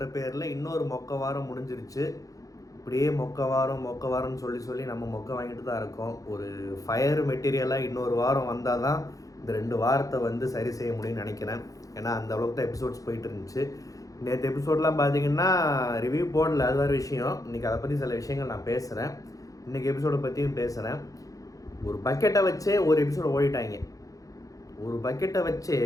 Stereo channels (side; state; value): right; late; 0.17 ms